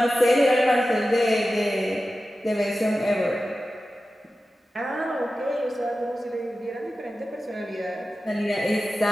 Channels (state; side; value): normal; both; correlation 0.94